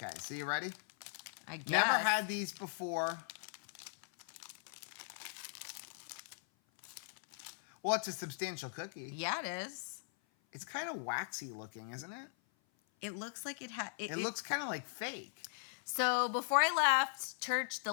so you ready? I guess. Never had these before. Well, it's a substantial cookie. Yeah, it is. It's kind of waxy looking, isn't it? It looks like it had. It looks kind of like fake. So before I left church, the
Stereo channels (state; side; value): silent; right; 51 dB below the other